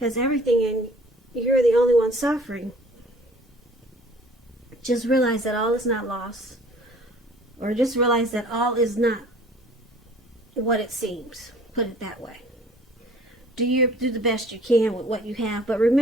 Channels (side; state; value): both; normal; correlation 0.52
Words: everything and you're the only one suffering. Just realize that all is not lost, or just realize that all is not what it seems. Put it that way. Do the best you can with what you have, but